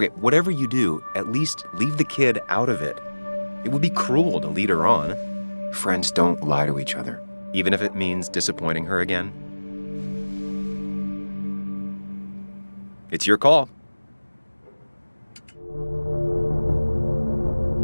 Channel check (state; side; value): inverted; both; correlation -1.00